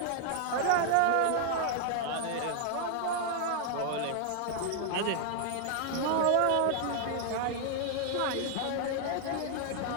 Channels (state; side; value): different; both; correlation 0.00